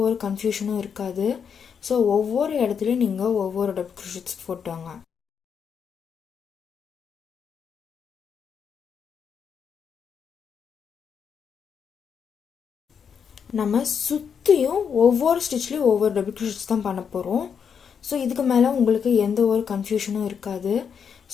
ஒரு கன்ஃபியூஷனும் இருக்காது. ஸோ ஒவ்வொரு இடத்துலையும் நீங்கள் ஒவ்வொரு டபுள் க்ரோஷெட்ஸ் போட்டுவாங்க. நம்ம சுற்றியும் ஒவ்வொரு ஸ்டிச்லேயும் ஒவ்வொரு டபுள் க்ரோஷெட்ஸ் தான் பண்ண போகிறோம். ஸோ இதுக்கு மேலே உங்களுக்கு எந்த ஒரு கன்ஃபியூஷனும் இருக்காது.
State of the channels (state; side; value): quieter; right; 7.0 dB